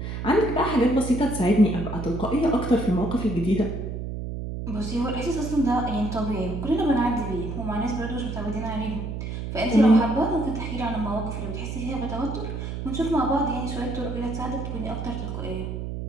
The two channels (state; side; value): noise; right; hum, 5 dB below the sound